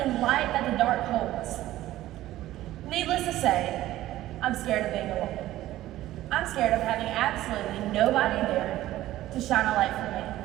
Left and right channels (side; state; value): left; quieter; 14.9 dB